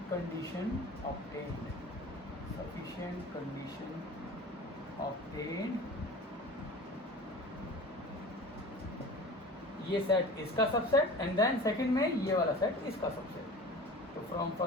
condition obtained, sufficient condition obtained, ये सेट इसका सबसेट एंड देन सेकंड में ये वाला सेट इसका सबसेट। तो फ्रॉम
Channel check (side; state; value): both; normal; correlation 0.38